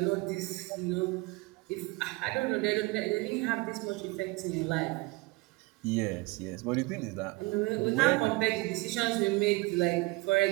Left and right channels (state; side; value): quieter; left; 24.0 dB